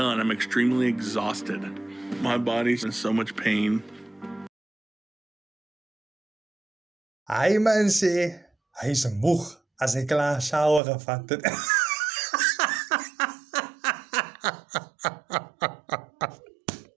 I'm extremely exhausted. My body's in so much pain. Hy man sê, hy's moeg as hy klaar shower gevat het.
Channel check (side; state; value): left; drops out; at 10.8 s